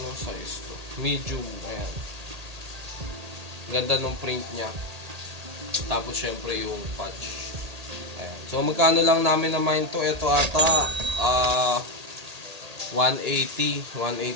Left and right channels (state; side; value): late; left; 1.8 ms